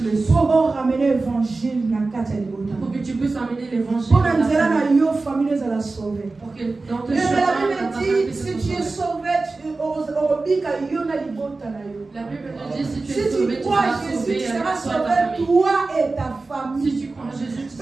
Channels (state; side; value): quieter; left; 3.6 dB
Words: le souffle. Pour ramener l'évangile. Pour que tu puisses amener l'évangile. Pour que dans tes chemins, la Bible dit, si tu es sauvé, la Bible dit, si tu es sauvé, tu seras sauvé, tu seras sauvé, toi et ta famille. Si tu crois en Jésus, tu